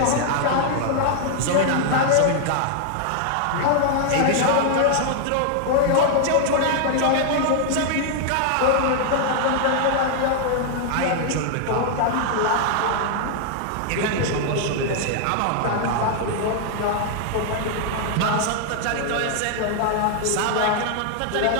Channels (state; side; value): different; both; correlation 0.00